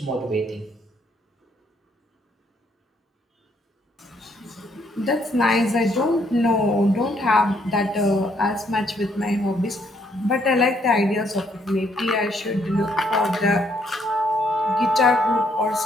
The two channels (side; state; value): both; normal; correlation 0.70